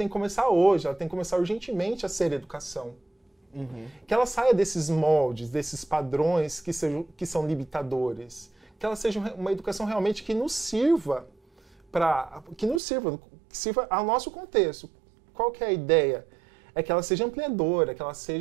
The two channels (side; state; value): left; drops out; at 12.8 s